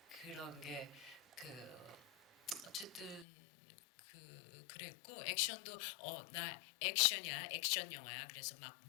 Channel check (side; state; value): right; drops out; at 3.2 s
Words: 그런 게 어쨌든 그랬고, 액션도 나 액션이야, 액션 영화야. 그래서 막